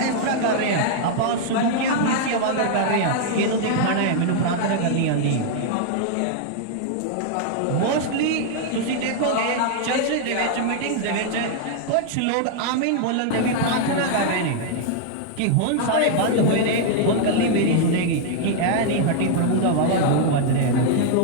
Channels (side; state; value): both; different; correlation 0.00